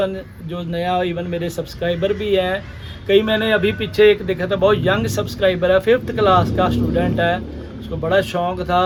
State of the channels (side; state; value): both; identical; correlation 1.00